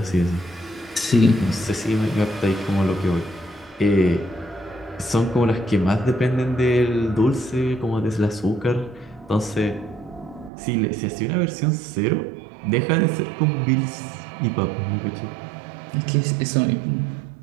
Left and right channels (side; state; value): left; drops out; at 10.5 s